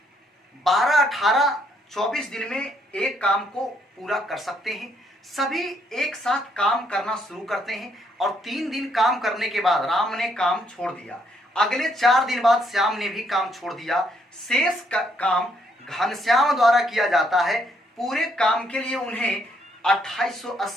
12, 18, 24 दिन में एक काम को पूरा कर सकते हैं। सभी एक साथ काम करना शुरू करते हैं और 3 दिन काम करने के बाद राम ने काम छोड़ दिया। अगले 4 दिन बाद श्याम ने भी काम छोड़ दिया। शेष काम घनश्याम द्वारा किया जाता है। पूरे काम के लिए उन्हें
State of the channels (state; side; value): normal; both; correlation 0.71